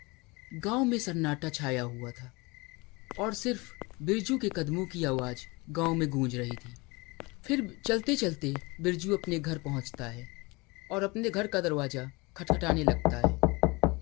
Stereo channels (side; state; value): right; quieter; 25.6 dB